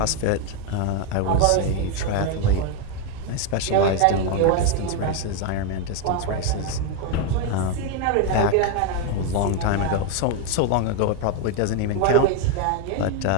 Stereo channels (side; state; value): both; different; correlation 0.01